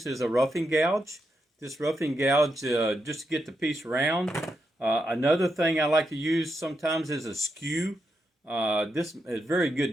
is a roughing gouge. This roughing gouge just to get the piece round. Another thing I like to use sometimes is a skew. This is a very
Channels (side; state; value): both; normal; correlation 0.84